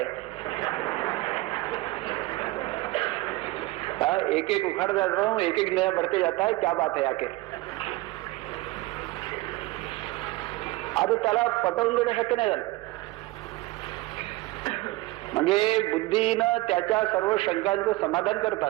एक एक उखड़ जा रहा हूं, एक एक नया बढ़ते जाता है, क्या बात है आखिर? आता त्याला पटवून देणं शक्य नाही झालं. म्हणजे बुद्धीनं त्याच्या सर्व शंकांचं समाधान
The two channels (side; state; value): left; quieter; 20.0 dB